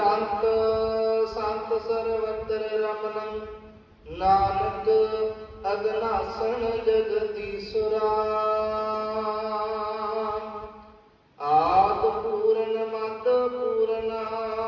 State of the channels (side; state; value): both; identical; correlation 1.00